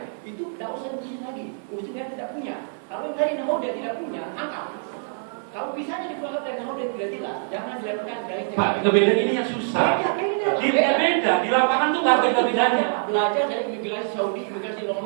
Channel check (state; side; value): silent; left; digital silence